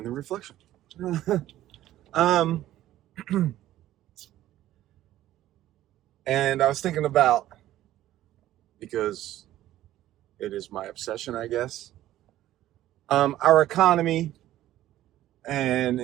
the reflection. And I was thinking about, because it is my obsession, I guess, our economy and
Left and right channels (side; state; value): left; quieter; 13.9 dB